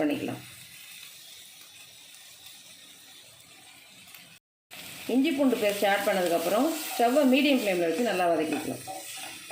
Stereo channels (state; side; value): identical; both; correlation 1.00